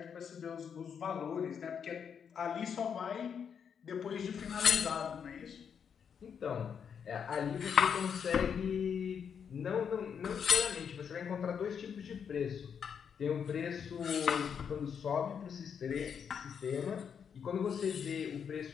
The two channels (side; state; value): right; quieter; 7.3 dB